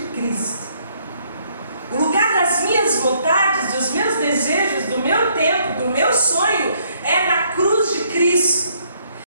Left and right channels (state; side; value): inverted; both; correlation -0.68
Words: Cristo. O lugar das minhas vontades, dos meus desejos, do meu tempo, do meu sonho, é na cruz de Cristo.